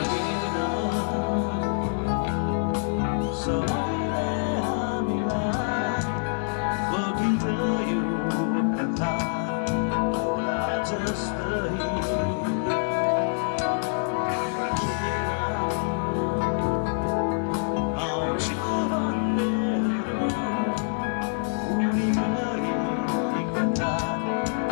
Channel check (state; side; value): silent; right; digital silence